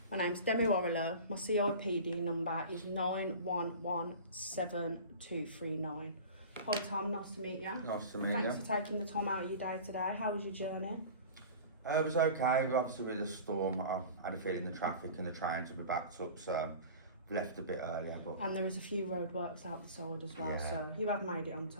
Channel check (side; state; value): both; inverted; correlation -0.38